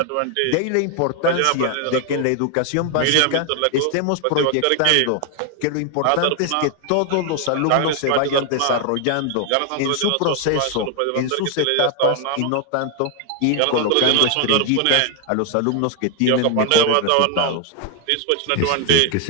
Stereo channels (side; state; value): both; different; correlation 0.00